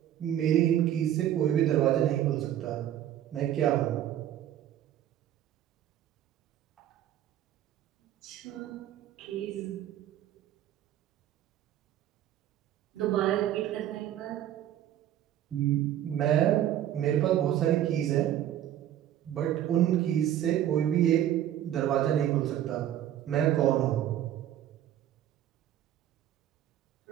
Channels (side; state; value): left; quieter; 11.6 dB